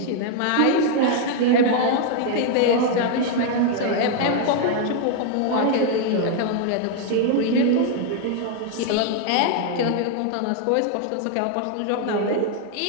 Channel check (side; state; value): both; different; correlation 0.00